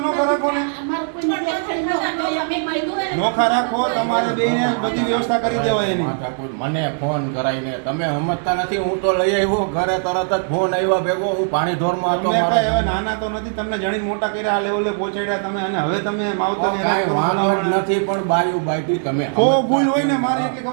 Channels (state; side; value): silent; left; digital silence